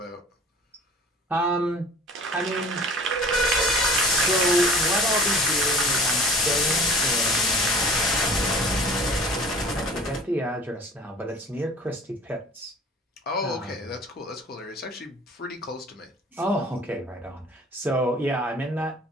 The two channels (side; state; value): both; normal; correlation 0.45